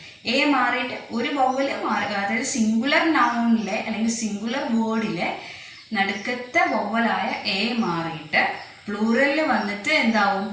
എ മാറിയിട്ട് ഒരു വവ്വല് മാറി, അതായത് സിംഗുലർ നൗണിലെ അല്ലെങ്കിൽ സിംഗുലർ വേർഡിലെ നടുക്കത്തെ വവ്വലായ എ മാറിയിട്ട് പ്ലൂറലിൽ വന്നിട്ട് എന്താവും?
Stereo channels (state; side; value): identical; both; correlation 1.00